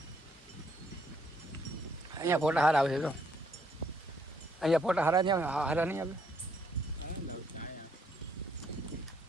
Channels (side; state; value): both; normal; correlation 0.70